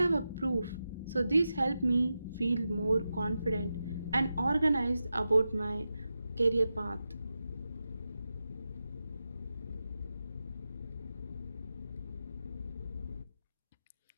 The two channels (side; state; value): both; inverted; correlation -0.91